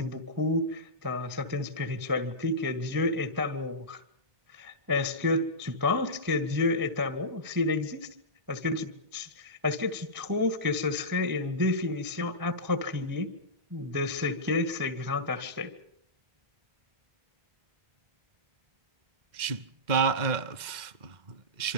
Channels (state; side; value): late; left; 2.0 ms